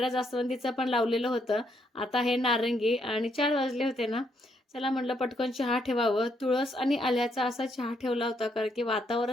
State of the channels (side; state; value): both; normal; correlation 0.75